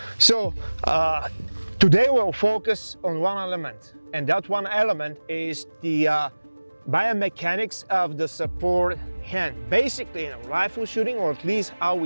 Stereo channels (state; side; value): inverted; both; correlation -1.00